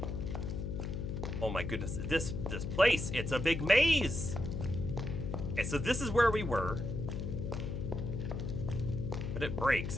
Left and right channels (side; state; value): left; noise; hum, 3 dB below the sound